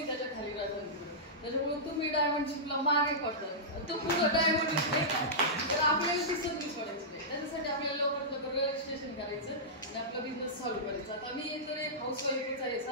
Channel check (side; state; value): both; normal; correlation -0.14